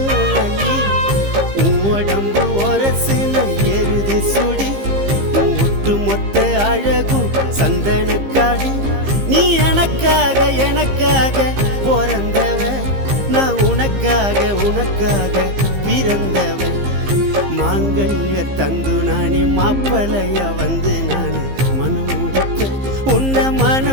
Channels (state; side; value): late; left; 15 ms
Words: நீ உடம்பு ஒரசுன எருது சுடி ஒட்டு மொத்த அழகும் சந்தனக்காடு நீ எனக்காக எனக்காக பிறந்தவ நான் உனக்காக உனக்காக பிறந்தவன் மாங்கல்ய தந்து நானே மாப்பிளையா வந்து நானே மனம் முடிப்பேன் உன்னை